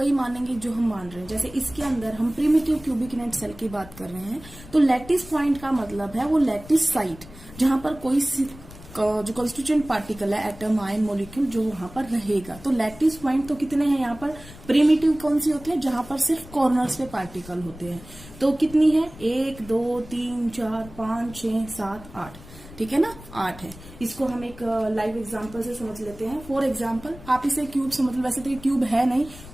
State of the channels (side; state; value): left; noise; rumble, 18 dB below the sound